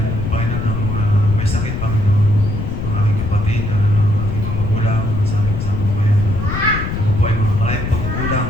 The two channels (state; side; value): noise; left; rumble, 3 dB below the sound